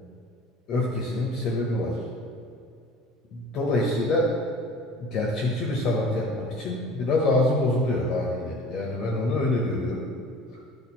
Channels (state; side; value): normal; both; correlation 0.44